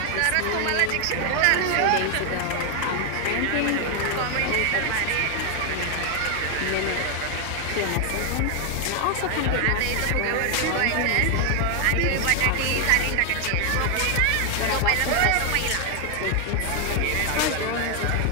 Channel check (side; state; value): both; different; correlation 0.00